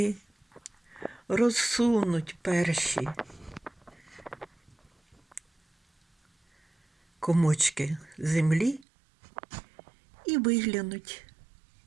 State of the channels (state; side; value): drops out; left; at 8.8 s